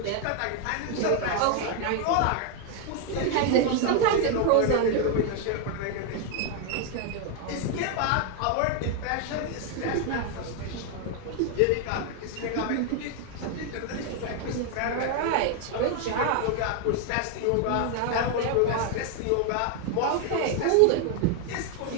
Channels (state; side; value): different; both; correlation 0.01